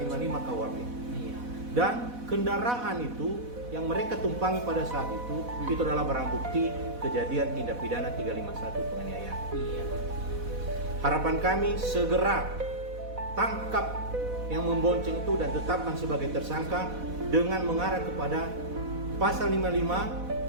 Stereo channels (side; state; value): left; late; 4.1 ms